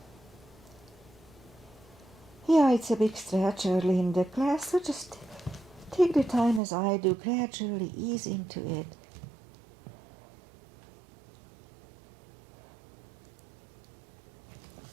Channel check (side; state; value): left; drops out; at 6.6 s